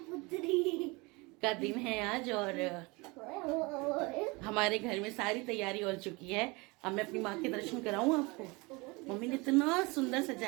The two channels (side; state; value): left; quieter; 25.9 dB